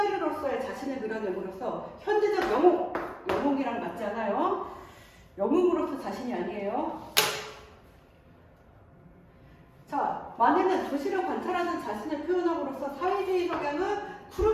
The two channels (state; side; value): identical; both; correlation 1.00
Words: 자신을 그려냄으로써 현대적 영웅이랑 맞지 않아요? 영웅으로서 자신이 아니에요. 자, 마네는 도시를 관찰하는 자신을 표현함으로써 사회주의 성향은